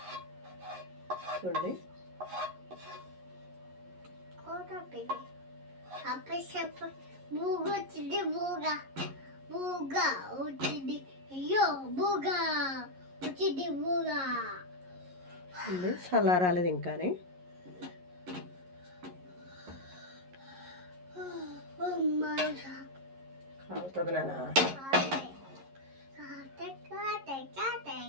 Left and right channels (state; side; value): late; left; 11 ms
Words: చూడండి. చల్లారాలేదు ఇంకానే. అవుతుంది నాన్న.